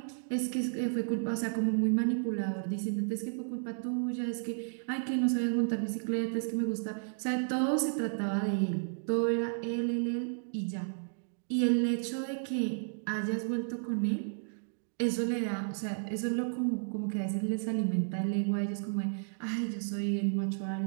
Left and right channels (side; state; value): left; silent; digital silence